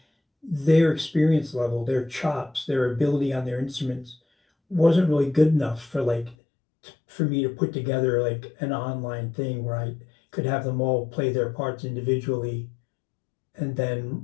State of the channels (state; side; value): drops out; right; at 6.4 s